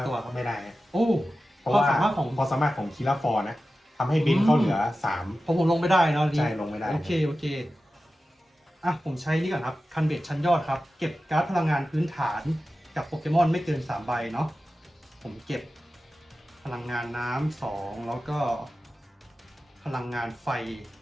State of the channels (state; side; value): normal; both; correlation 0.94